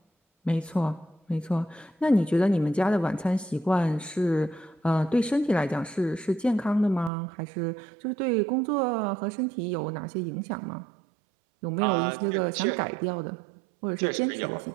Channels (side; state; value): left; drops out; at 7.1 s